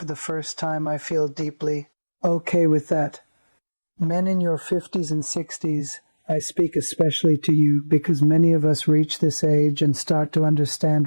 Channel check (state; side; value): inverted; both; correlation -1.00